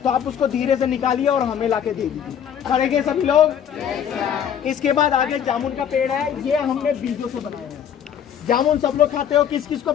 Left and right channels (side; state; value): right; quieter; 8.8 dB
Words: तो आप उसको धीरे से निकालिए और हमें लाके दे दीजिए। करेंगे सभी लोग? इसके बाद आगे जामुन का पेड़ है, ये हमने बीजों से बनाया है। जामुन सब लोग खाते हो, किस किस को